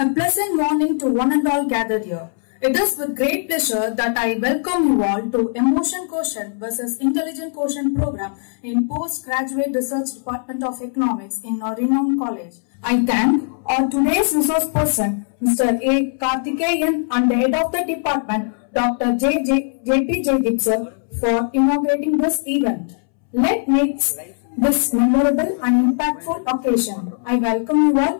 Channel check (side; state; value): right; silent; 66 dB below the other